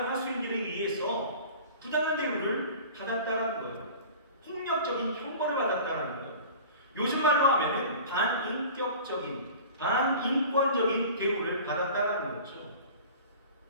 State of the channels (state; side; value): inverted; both; correlation -0.41